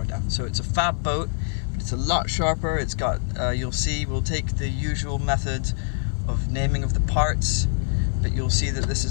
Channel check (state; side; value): silent; right; 56 dB below the other